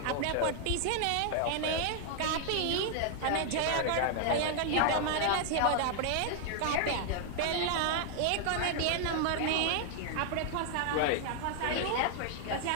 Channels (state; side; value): different; both; correlation 0.00